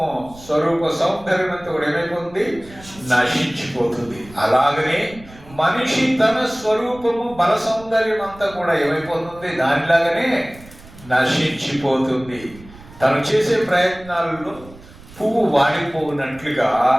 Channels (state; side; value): noise; right; rumble, 21 dB below the sound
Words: సౌందర్యం అంతా కూడా ఏమైపోతుంది? నశించిపోతుంది. అలాగనే మనిషి తన స్వరూపము, బల సౌందర్యం అంతా కూడా ఏమైపోతుంది? దానిలాగానే నశించిపోతుంది. తను చేసే ప్రయత్నాలలో పువ్వు వాడిపోనట్లుగా